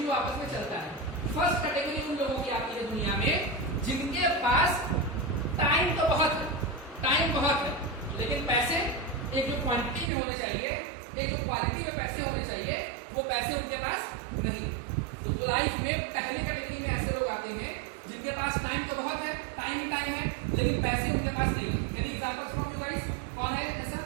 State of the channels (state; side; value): drops out; left; at 10.1 s